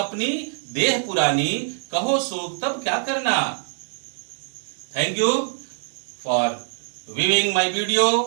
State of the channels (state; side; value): silent; left; digital silence